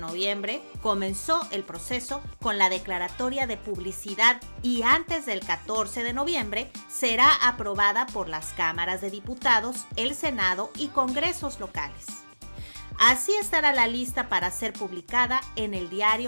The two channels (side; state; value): both; inverted; correlation -1.00